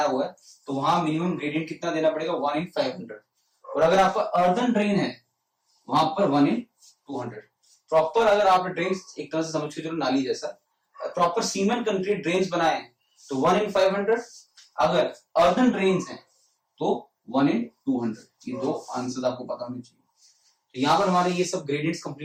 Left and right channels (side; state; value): both; identical; correlation 1.00